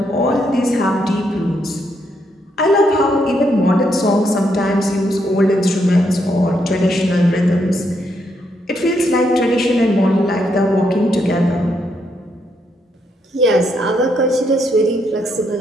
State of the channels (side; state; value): both; normal; correlation 0.77